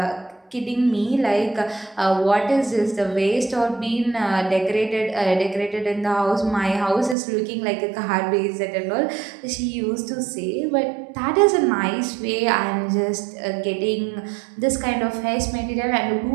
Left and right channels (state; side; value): drops out; left; at 7.2 s